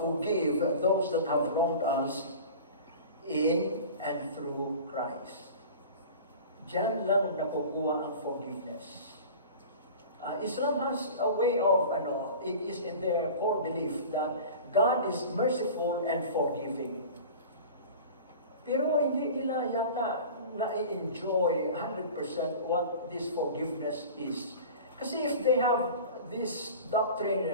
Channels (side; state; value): both; inverted; correlation -0.38